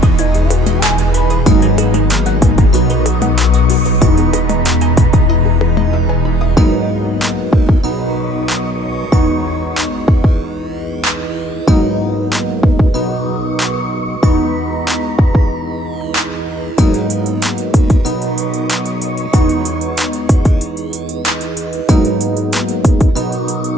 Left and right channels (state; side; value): normal; both; correlation 0.62